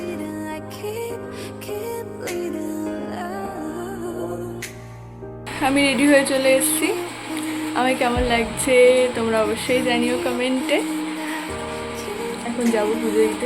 আমি রেডি হয়ে চলে এসেছি। আমার কেমন লাগছে তোমরা অবশ্যই জানিও কমেন্টে। এখন যাবো পুজো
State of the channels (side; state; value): both; identical; correlation 1.00